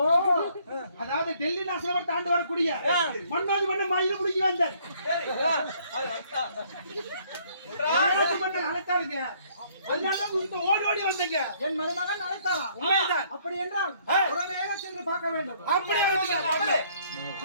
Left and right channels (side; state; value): both; inverted; correlation -0.64